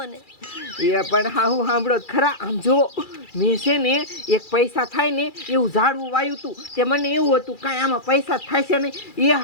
એ પણ હાહુ સાંભળો ખરા. આમ જો મેં છે ને એક પૈસા થાય ને એવું ઝાડવું વાયું હતું. તે મને એવું હતું કાંઈ આમાં પૈસા થાય છે નહીં. એ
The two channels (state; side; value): late; right; 2.3 ms